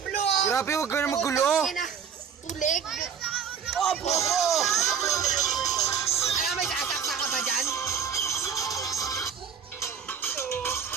blue! Grabe, huwag ka na magulo. Tulig! Oh, bobo! Alam, may sasaksa ka ba dyan?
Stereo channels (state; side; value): quieter; left; 7.3 dB